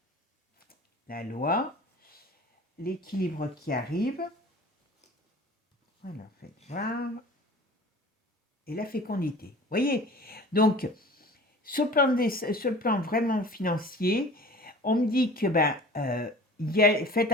la loi, l'équilibre qui arrive, voilà, faites voir, et la fécondité. Vous voyez, donc, sur le plan vraiment financier, on me dit que faites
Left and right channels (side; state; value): both; normal; correlation 0.42